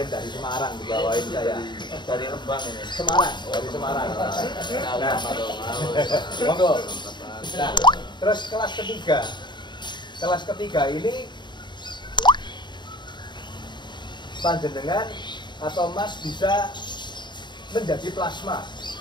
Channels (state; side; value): late; right; 0.22 ms